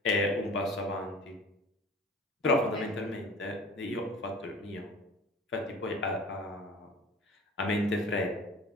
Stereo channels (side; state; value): both; normal; correlation 0.42